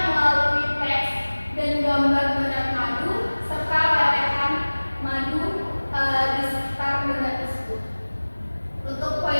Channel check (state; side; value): inverted; both; correlation -1.00